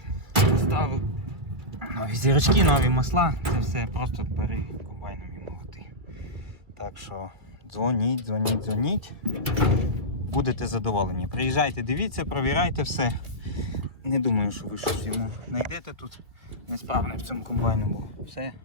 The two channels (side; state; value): left; late; 2.1 ms